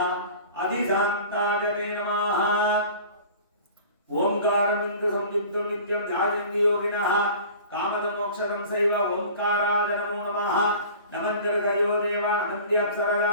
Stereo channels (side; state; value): both; inverted; correlation -0.43